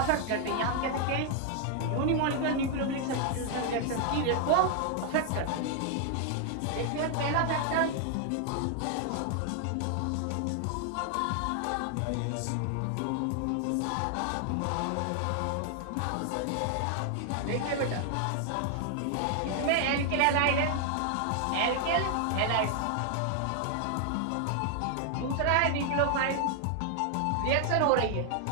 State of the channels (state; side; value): different; both; correlation 0.00